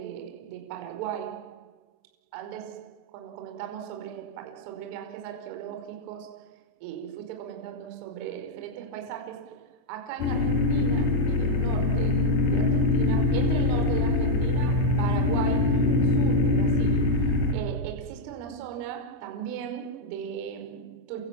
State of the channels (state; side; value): late; right; 7.7 ms